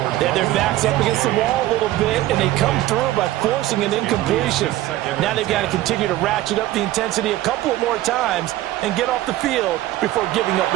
They have their backs up against the wall a little bit, and they come through by forcing an incompletion. Now they've got to continue to ratchet up the intensity a couple of more times and get off the field before giving up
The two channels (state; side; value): quieter; left; 15.5 dB